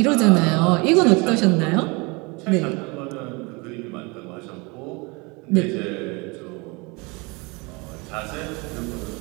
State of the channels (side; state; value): left; quieter; 27.8 dB